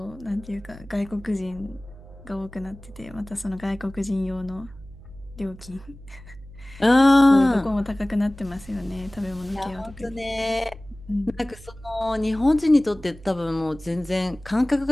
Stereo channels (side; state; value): right; noise; hum, 19 dB below the sound